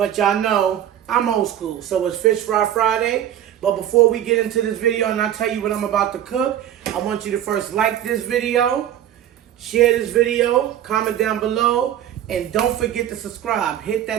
y'all know, I'm old school, so it's Fish Fry Friday. But before we get into this video and I tell you what I'm about to cook, I want you to first like this video, share this video, comment down below, and don't forget to subscribe. Hit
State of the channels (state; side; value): quieter; left; 11.0 dB